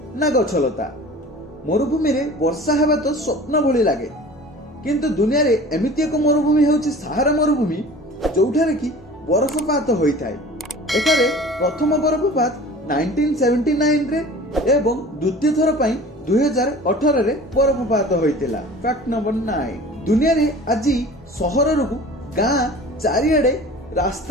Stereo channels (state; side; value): normal; both; correlation 0.42